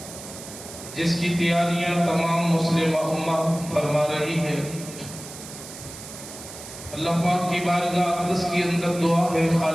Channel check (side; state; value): right; noise; hiss, 13 dB below the sound